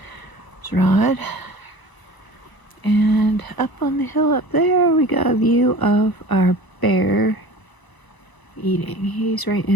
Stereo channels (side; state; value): right; late; 1.0 ms